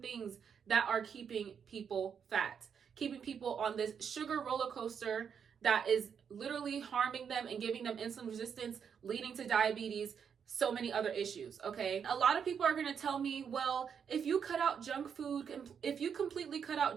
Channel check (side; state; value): left; quieter; 7.2 dB